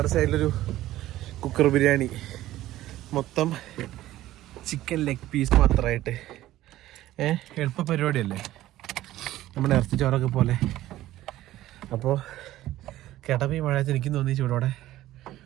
സൈഡിലൊരു കുക്കർ ബിരിയാണി, മൊത്തം ചിക്കൻ ലെഗ് പീസ് മാത്രമായിട്ട്. എളുപ്പ പരിപാടിയല്ലേ, നമ്മുടെ ഇറച്ചി ചോറൊക്കെ പോലെ. അപ്പോൾ കേട്ടപ്പോൾ ഈ മഴയത്ത് എനിക്കും തോന്നി ചൂടോടെ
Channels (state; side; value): quieter; left; 14.9 dB